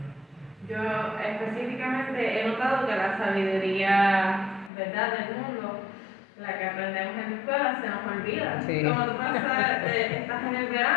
Yo específicamente he notado que la sabiduría, ¿verdad?, del mundo, la que aprendemos en la escuela, se nos olvida. Sí. Como tú estás en el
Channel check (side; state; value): right; drops out; at 4.7 s